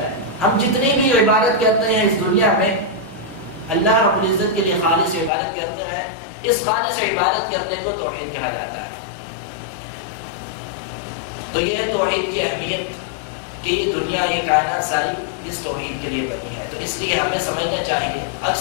ہے. ہم جتنی بھی عبادت کرتے ہیں اس دنیا میں اللہ رب العزت کے لیے خالص عبادت کرتے ہیں, اس خالص عبادت کرنے کو توحید کہا جاتا ہے. تو یہ ہے توحید کی اہمیت کہ یہ دنیا, یہ کائنات ساری اس توحید کے لیے بنی ہے. تو اس لیے ہمیں سمجھنا چاہیے.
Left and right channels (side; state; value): right; drops out; at 5.3 s